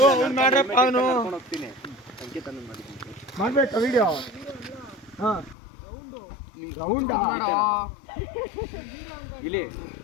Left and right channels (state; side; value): drops out; right; at 5.6 s